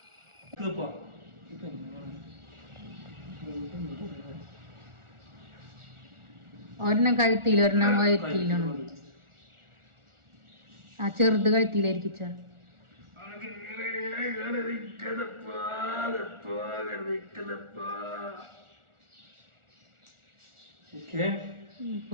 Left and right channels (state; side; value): late; left; 1.4 ms